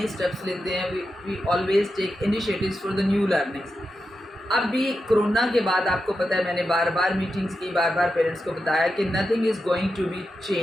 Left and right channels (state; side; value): normal; both; correlation 0.89